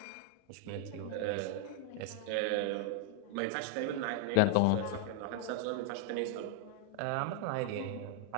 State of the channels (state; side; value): different; both; correlation 0.00